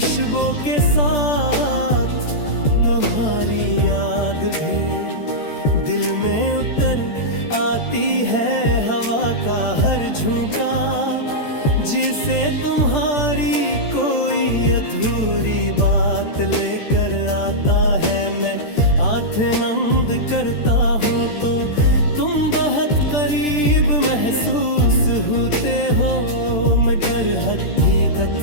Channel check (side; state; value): right; late; 13 ms